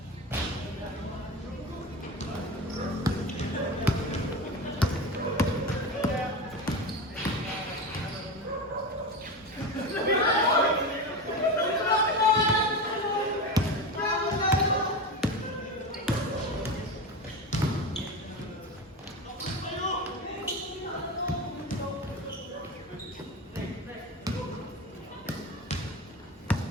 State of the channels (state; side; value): normal; both; correlation 0.24